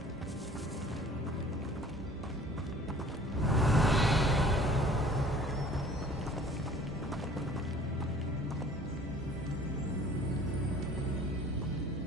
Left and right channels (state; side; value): normal; both; correlation 0.50